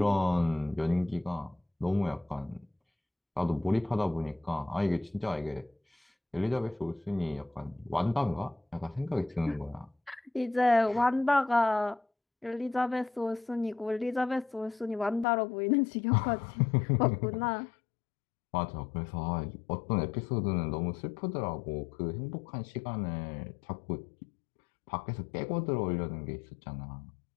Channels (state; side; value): drops out; right; at 15.2 s